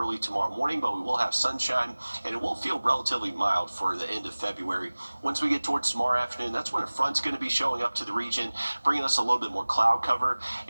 tomorrow morning, but we will have sunshine, and it will feel relatively mild for the end of February. Once we get towards tomorrow afternoon, that's when a front's going to be showing up to the region, bringing us a little bit more cloud cover,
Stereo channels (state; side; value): inverted; both; correlation -1.00